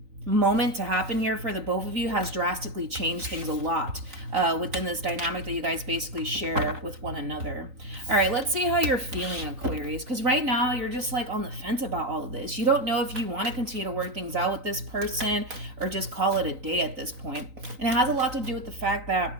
moment to happen here for the both of you has drastically changed things a lot within this dynamic that you guys basically share with one another. All right, let's see how you're feeling, Aquarius, because right now you're just like on the fence about all of this. You don't know if you want to continue to work things out with this person or just call it a day at this point. And it has a lot to do with the fact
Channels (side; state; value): left; late; 3.9 ms